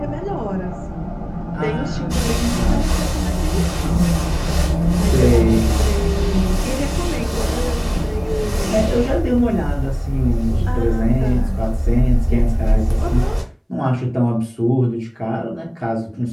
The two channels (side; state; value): both; identical; correlation 1.00